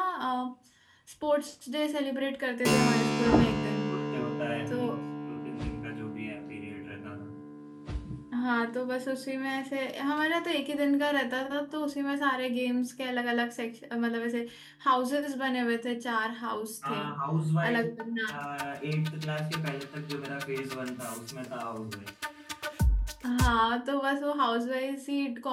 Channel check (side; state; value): both; identical; correlation 1.00